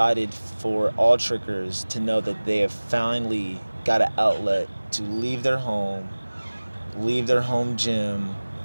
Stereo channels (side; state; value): both; inverted; correlation -1.00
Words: for all trickers to know that they have finally got an outlet to leave their home gym,